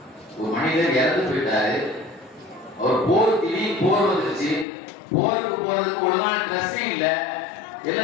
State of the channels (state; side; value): drops out; right; at 4.7 s